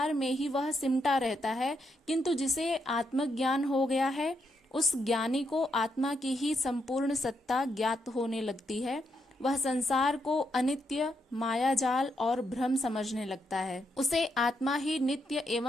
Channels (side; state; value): both; normal; correlation 0.79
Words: में ही वह सिमटा रहता है। किंतु जिसे आत्मज्ञान हो गया है, उस ज्ञानी को आत्मा की ही संपूर्ण सत्ता ज्ञात होने लगती है। वह संसार को अनित्य, मायाजाल और भ्रम समझने लगता है। उसे आत्मा ही नित्य